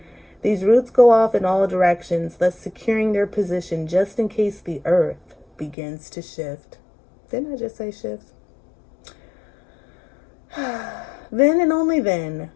These roots go off in all directions, thus securing their position just in case the earth begins to shift. Didn't I just say shift? Then and only then,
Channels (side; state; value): right; drops out; at 5.8 s